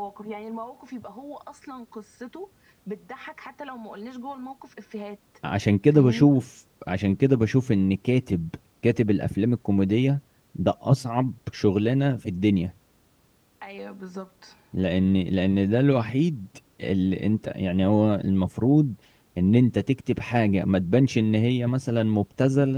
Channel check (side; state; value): both; identical; correlation 1.00